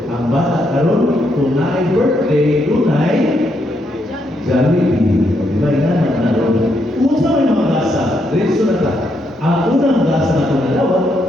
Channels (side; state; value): both; normal; correlation 0.77